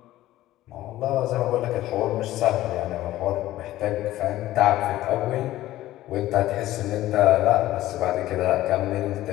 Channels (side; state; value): right; quieter; 15.1 dB